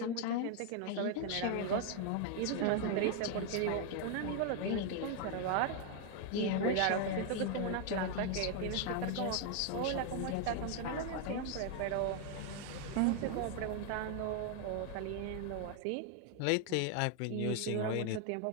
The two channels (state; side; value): different; both; correlation 0.00